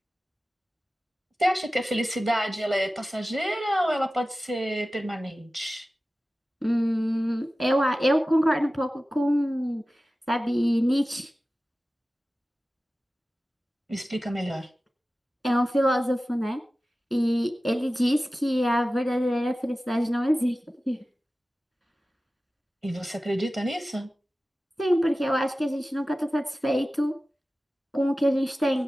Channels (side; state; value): both; normal; correlation 0.96